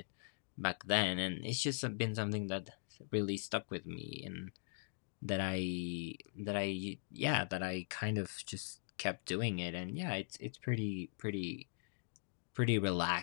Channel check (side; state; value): right; silent; digital silence